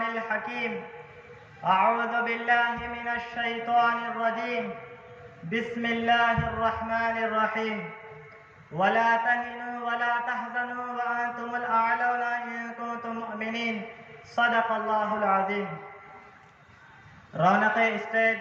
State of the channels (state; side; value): identical; both; correlation 1.00